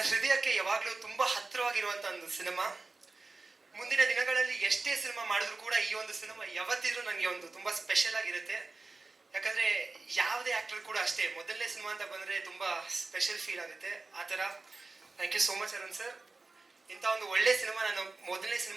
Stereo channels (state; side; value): quieter; left; 3.6 dB